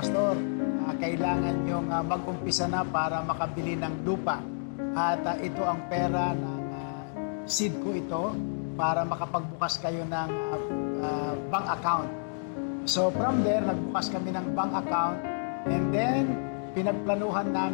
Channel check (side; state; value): right; silent; digital silence